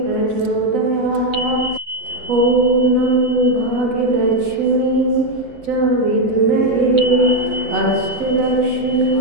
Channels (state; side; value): late; left; 7.6 ms